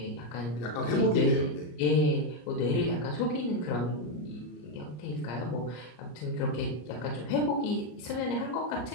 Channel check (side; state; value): right; late; 33 ms